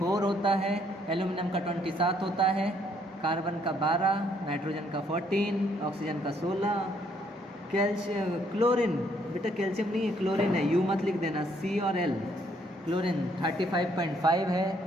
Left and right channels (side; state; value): both; normal; correlation 0.68